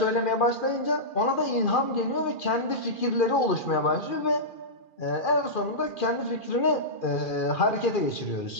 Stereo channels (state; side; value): late; right; 2.4 ms